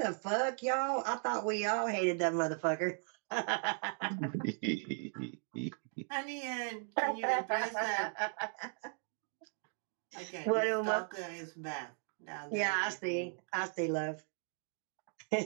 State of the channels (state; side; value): silent; left; 53 dB below the other